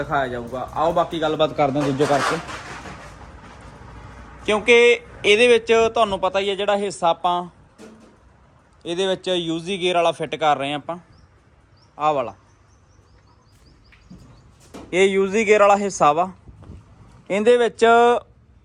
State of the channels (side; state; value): both; identical; correlation 1.00